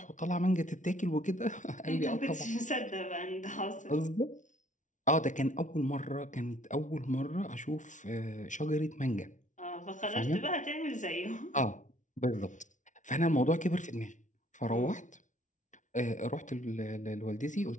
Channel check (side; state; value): right; late; 0.37 ms